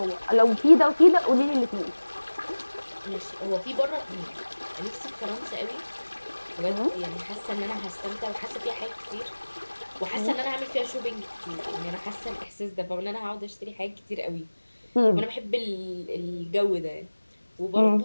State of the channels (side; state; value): both; inverted; correlation -1.00